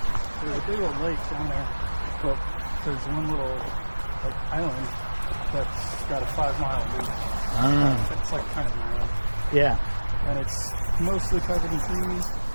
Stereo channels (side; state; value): both; inverted; correlation -1.00